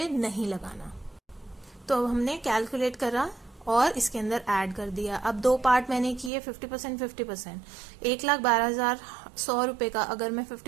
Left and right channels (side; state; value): left; drops out; at 6.3 s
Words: नहीं लगाना। तो अब हमने कैलकुलेट करा और इसके अंदर ऐड कर दिया। अब 2 पार्ट मैंने किए, 50%। 1,12,100 रुपए का अगर मैं